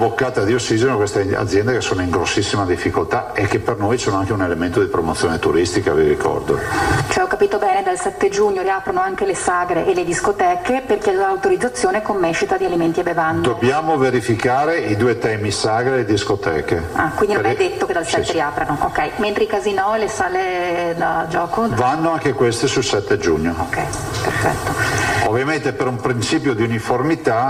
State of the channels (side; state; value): both; identical; correlation 1.00